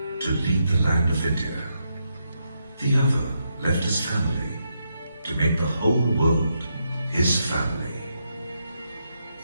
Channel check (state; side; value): inverted; both; correlation -0.82